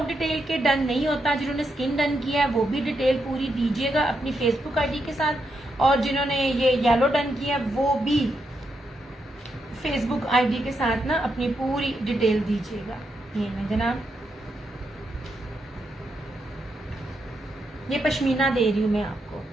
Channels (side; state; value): both; normal; correlation 0.82